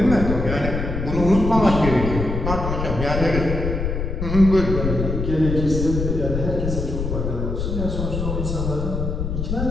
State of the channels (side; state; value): left; noise; rumble, 3 dB below the sound